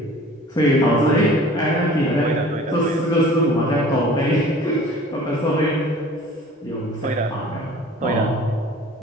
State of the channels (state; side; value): normal; both; correlation 0.46